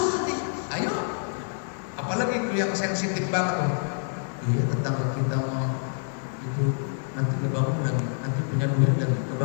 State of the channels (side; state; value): right; silent; digital silence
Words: nanti. Ayo. Apalagi itu yang sensitif banget. Iya, tetangga kita mau itu nanti ngebangun lagi, nanti punya duit lagi,